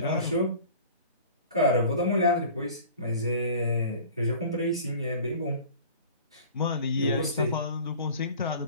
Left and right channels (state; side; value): inverted; both; correlation -0.43